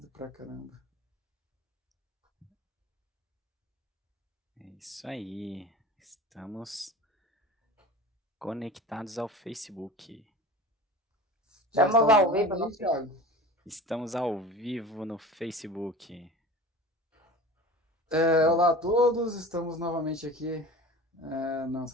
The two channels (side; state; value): both; normal; correlation 0.37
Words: pra caramba. É isso aí. Estamos conectados ao Facebook. Já Estamos está ao online vivo aí, no Thiago? Estamos ao vivo no Facebook. Olá a todos, estamos novamente aqui no